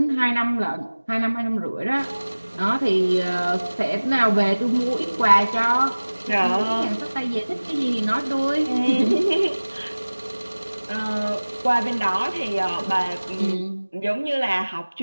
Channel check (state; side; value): inverted; both; correlation -1.00